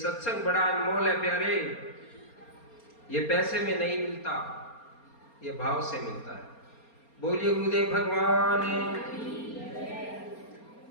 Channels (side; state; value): right; late; 4.3 ms